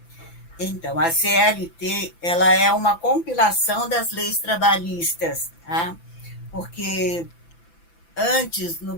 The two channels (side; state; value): right; late; 5.9 ms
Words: Então, a CLT, ela é uma compilação das leis trabalhistas, tá? Porque antes, no